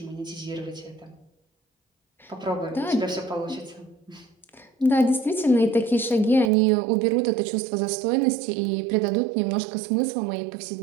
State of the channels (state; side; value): drops out; left; at 6.5 s